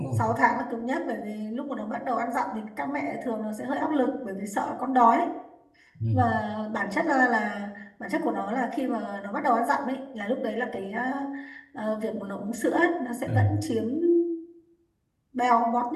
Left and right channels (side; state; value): both; identical; correlation 1.00